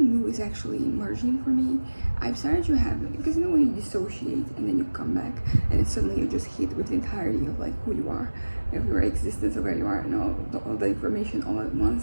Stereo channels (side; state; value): both; inverted; correlation -1.00